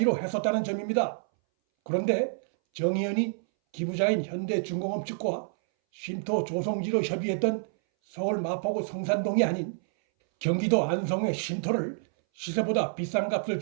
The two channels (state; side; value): silent; left; 59 dB below the other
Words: 했었다는 점입니다. 그런데 정의연이 기부자인 현대중공업 측과 쉼터 조성지로 협의했던 서울 마포구 성산동이 아닌 경기도 안성의 쉼터를 시세보다 비싼 값을